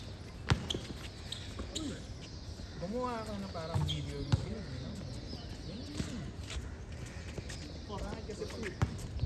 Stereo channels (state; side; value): identical; both; correlation 1.00